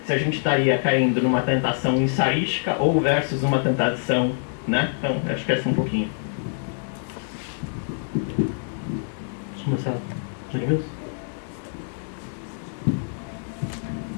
se a gente estaria caindo numa tentação ensaística ou versus uma tentação, né? Então, acho que essa um pouquinho. Vamos começar. Edmilson?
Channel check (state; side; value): silent; right; digital silence